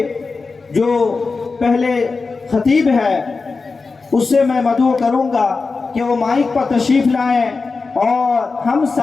جو پہلے خطیب ہے اس سے میں مدعو کروں گا کہ وہ مائک پر تشریف لائیں اور ہم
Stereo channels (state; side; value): quieter; right; 4.2 dB